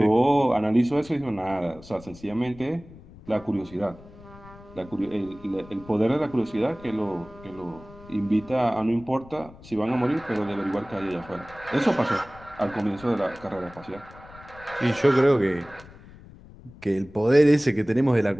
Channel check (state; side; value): noise; left; rumble, 20 dB below the sound